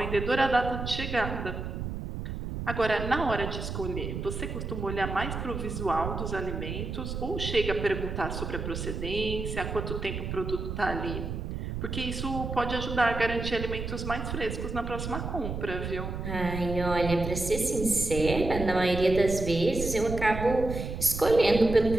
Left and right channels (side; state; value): right; noise; rumble, 5 dB below the sound